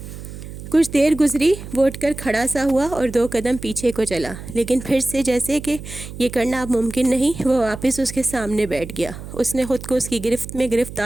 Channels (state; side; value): noise; right; hum, 12 dB below the sound